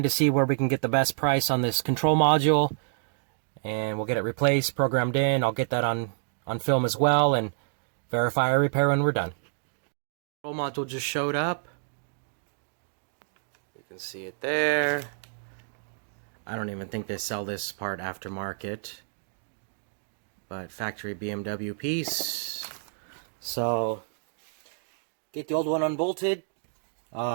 to see where we can get the best price on this control module, and we'll get it replaced, programmed in. I'll get that on film as well and verify our repair when we're done. Control module just showed up. You can see it there. I don't even think they sell this part aftermarket, but factory BMW piece. So get the old one unbolted.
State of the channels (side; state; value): left; silent; digital silence